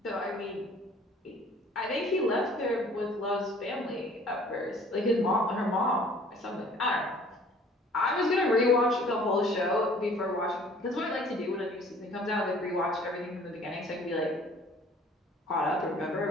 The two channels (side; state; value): both; normal; correlation 0.53